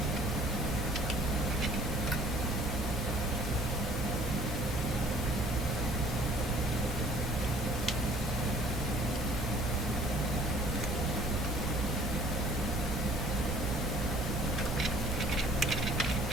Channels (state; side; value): normal; both; correlation 0.54